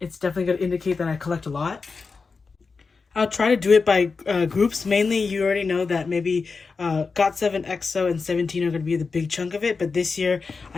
definitely going to indicate that I collect a lot. I'll try to do it by groups. Mainly, you already know that maybe got7, EXO, and 17 are going to be the big chunk of it. But this year,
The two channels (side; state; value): right; quieter; 4.6 dB